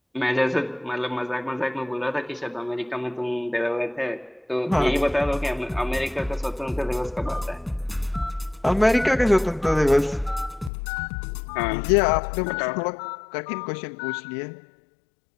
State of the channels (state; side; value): drops out; right; at 10.7 s